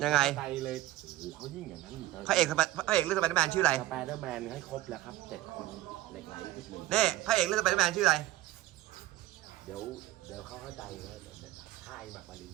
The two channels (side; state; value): left; quieter; 15.8 dB